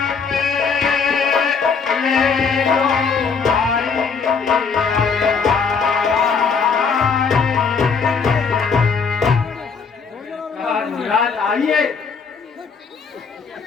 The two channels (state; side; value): quieter; right; 5.5 dB